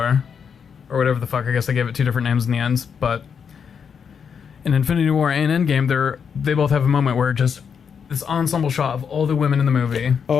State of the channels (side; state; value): right; quieter; 6.8 dB